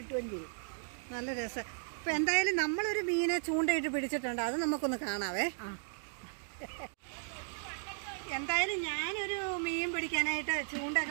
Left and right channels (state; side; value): silent; left; digital silence